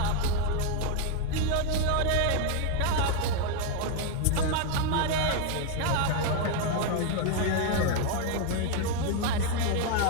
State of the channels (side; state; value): both; different; correlation 0.01